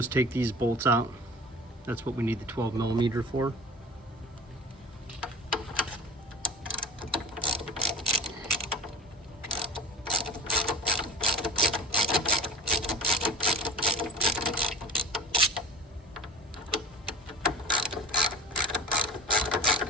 take these bolts out. That's what we need the 12mm for.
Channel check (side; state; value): both; normal; correlation 0.37